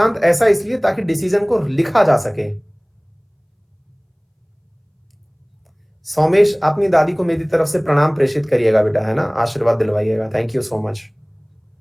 ऐसा इसलिए ताकि डिसीजन को लिखा जा सके। सोमेश अपनी दादी को मेरी तरफ से प्रणाम प्रेषित करिएगा बेटा, है ना, आशीर्वाद दिलवाइएगा। Thank you so much.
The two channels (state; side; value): identical; both; correlation 1.00